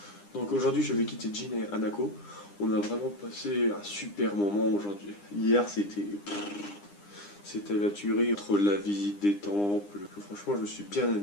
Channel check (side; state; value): right; late; 9.9 ms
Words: Donc aujourd'hui je vais quitter Jin et Hanako. On a vraiment passé un super moment aujourd'hui. Hier c'était la tuerie entre la visite des temples. Franchement je me suis bien